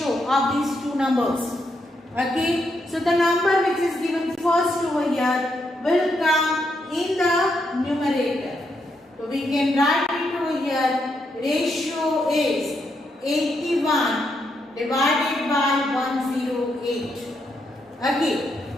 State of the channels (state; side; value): normal; both; correlation 0.80